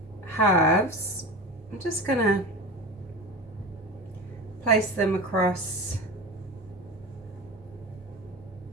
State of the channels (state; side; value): normal; both; correlation 0.29